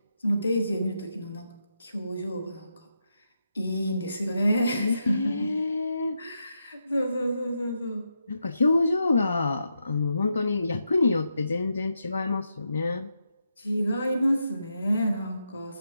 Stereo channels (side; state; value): both; inverted; correlation -0.84